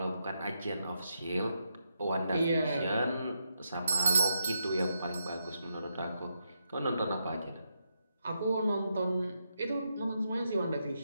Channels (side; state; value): both; inverted; correlation -0.83